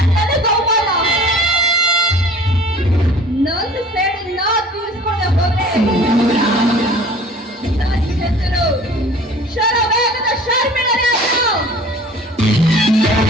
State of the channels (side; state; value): both; normal; correlation 0.47